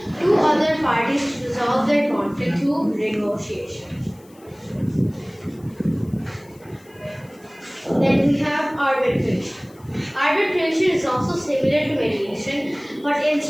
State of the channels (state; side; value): noise; left; hiss, 29 dB below the sound